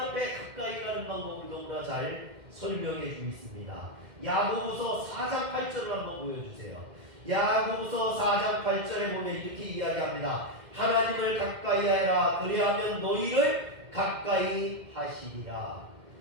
가까이 가는 방법을 너무나 잘 설명해 주고 있습니다. 야고보서 4장 8절을 한번 보여주세요. 야고보서 4장 8절에 보면 이렇게 이야기합니다. 하나님을 가까이 하라. 그리하면 너희를 가까이 하시리라.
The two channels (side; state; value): left; late; 2.1 ms